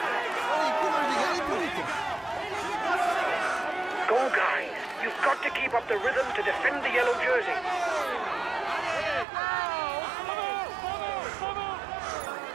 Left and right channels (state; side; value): drops out; left; at 9.2 s